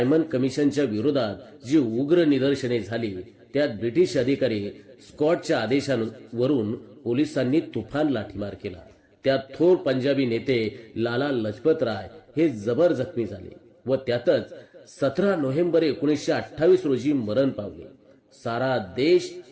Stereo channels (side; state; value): both; identical; correlation 1.00